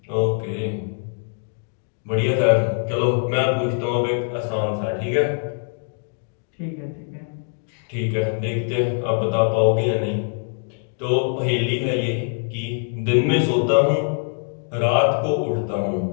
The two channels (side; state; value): right; silent; 60 dB below the other